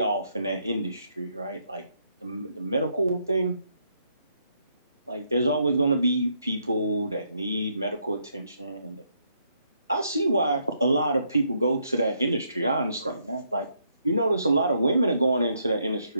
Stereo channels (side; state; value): both; inverted; correlation -0.75